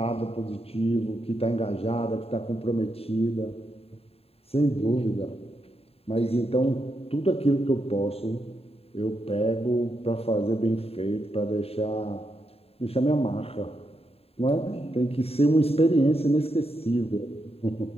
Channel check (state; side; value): late; right; 0.29 ms